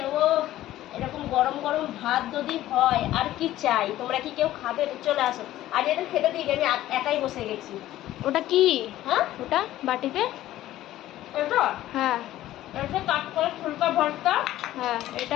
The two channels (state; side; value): quieter; right; 14.3 dB